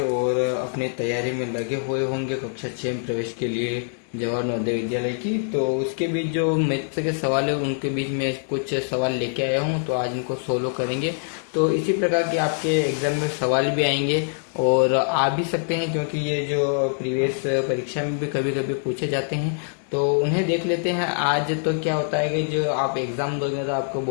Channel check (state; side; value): silent; right; digital silence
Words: अपनी तैयारी में लगे हुए होंगे कक्षा 6 में प्रवेश के लिए जवाहर नवोदय विद्यालय की। तो उसके बीच जो मैथ्स के सवाल है उनके बीच में कुछ सवाल लेके आया हूँ, तो आज इनको सोल्व करेंगे। तो इसी प्रकार के आपके एग्ज़ाम में सवाल भी आएंगे और आ भी सकते हैं, क्योंकि ये जो प्रीवियस परीक्षा में भी कभी कभी पूछे जाते हैं, तो उन्हें देख लेते हैं। आज तो क्या होता है कि जो आप एग्ज़ाम दोगे तो आपको